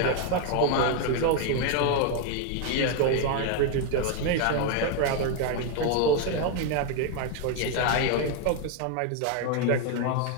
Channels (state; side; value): different; both; correlation 0.01